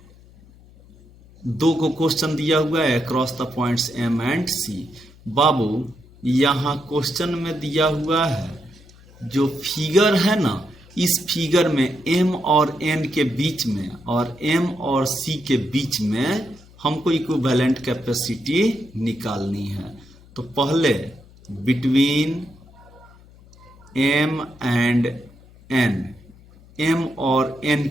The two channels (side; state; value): left; noise; hum, 24 dB below the sound